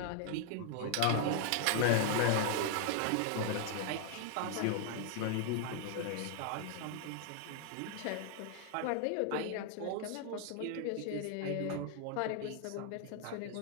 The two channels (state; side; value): different; both; correlation 0.00